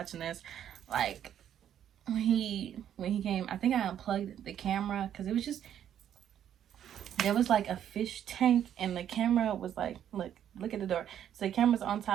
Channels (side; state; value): left; quieter; 10.0 dB